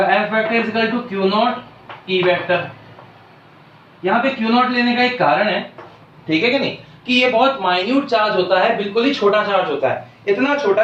F vector is equal to Q not E vector. यहाँ पे Q नॉट लेने का एक कारण है, ठीक है कि नहीं, कि ये बहुत माइन्यूट चार्ज होता है, बिल्कुल ही छोटा चार्ज होता है, इतना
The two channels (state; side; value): identical; both; correlation 1.00